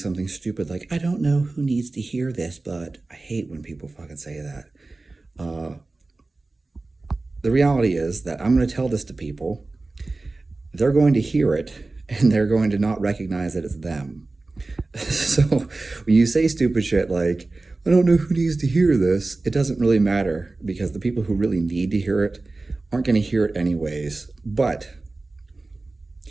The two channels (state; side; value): quieter; left; 3.3 dB